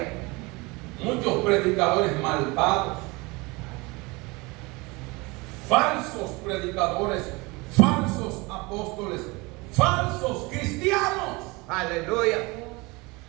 Muchos predicadores malvados, falsos predicadores, falsos apóstoles, falsos cristianos, Aleluya.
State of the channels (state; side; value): quieter; left; 25.0 dB